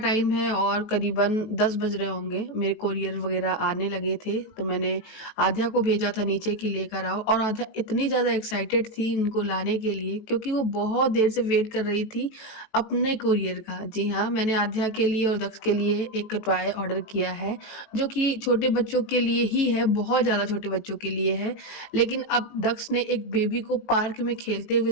है और करीबन 10 बज रहे होंगे। मेरे कोरियर वगैरह आने लगे थे तो मैंने आध्या को भेजा था नीचे कि लेकर आओ, और आध्या इतनी ज़्यादा एक्साइटेड थी इनको लाने के लिए क्योंकि वो बहुत देर से वेट कर रही थी अपने कोरियर का। जी हाँ, मैंने आध्या के लिए और दक्ष के लिए एक टॉय ऑर्डर किया है जो कि छोटे बच्चों के लिए ही है, बहुत ज़्यादा छोटे बच्चों के लिए है। लेकिन अब दक्ष ने एक बेबी को पार्क में खेलते हुए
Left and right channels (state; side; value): late; right; 19 ms